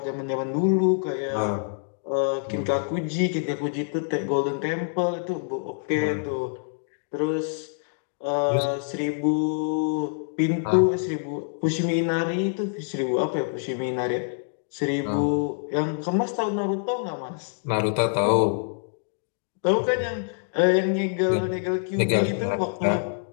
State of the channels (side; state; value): right; silent; digital silence